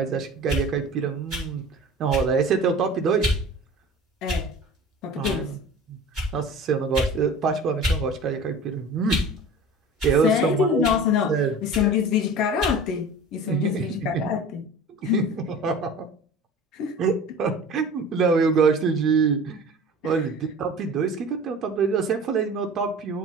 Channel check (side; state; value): both; normal; correlation 0.39